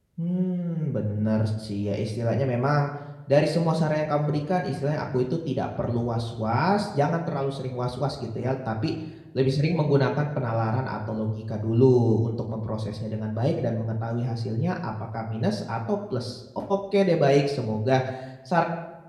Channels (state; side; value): identical; both; correlation 1.00